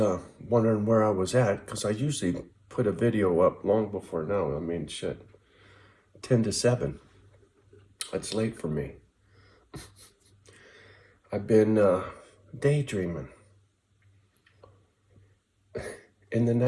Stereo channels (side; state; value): both; identical; correlation 1.00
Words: wondering where I was at, because I usually put a video up long before now. I mean, shit, 10 to 7. That's late for me. I've been daydreaming in the